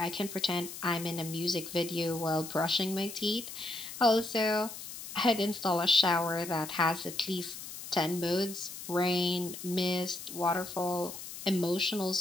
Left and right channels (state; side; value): noise; left; hiss, 11 dB below the sound